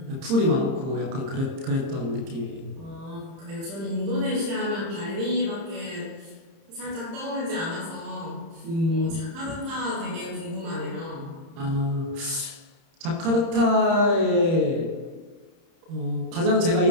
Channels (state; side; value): late; left; 30 ms